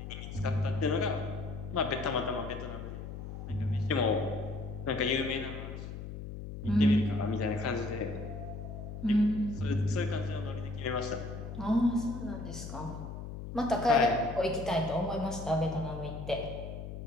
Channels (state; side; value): noise; left; hum, 8 dB below the sound